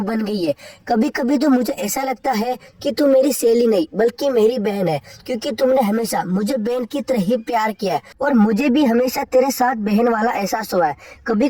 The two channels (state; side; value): identical; both; correlation 1.00